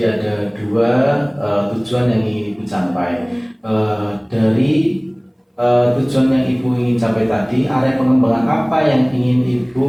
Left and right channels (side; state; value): both; identical; correlation 1.00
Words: ada dua tujuan yang ingin Ibu capai. Dari tujuan yang Ibu ingin capai tadi, area pengembangan apa yang ingin